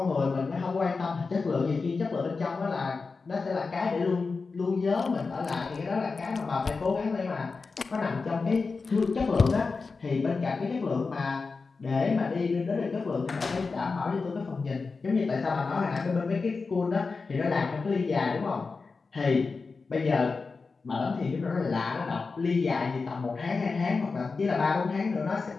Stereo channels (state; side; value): quieter; right; 4.4 dB